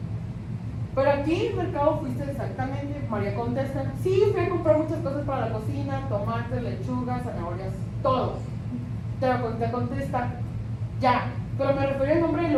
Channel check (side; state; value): both; identical; correlation 1.00